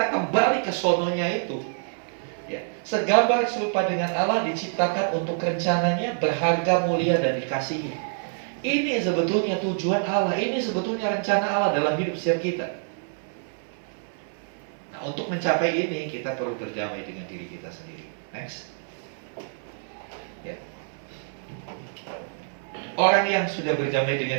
kembali ke sononya itu. Ya, segambar serupa dengan Allah, diciptakan untuk rencananya, berharga, mulia, dan dikasihi. Ini sebetulnya tujuan Allah. Ini sebetulnya rencana Allah dalam hidup setiap kita. Nah, untuk mencapai ini kita perlu berdamai dengan diri kita sendiri. Next. Ya. Orang yang sudah berdamai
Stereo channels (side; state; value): left; silent; 59 dB below the other